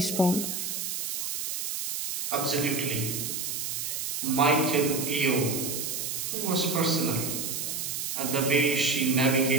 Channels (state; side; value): noise; right; hiss, 3 dB below the sound